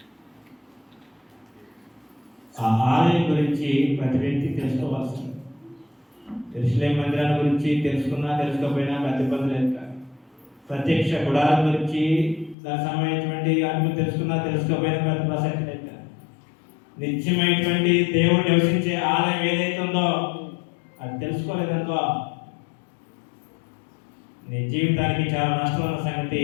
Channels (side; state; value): right; drops out; at 12.6 s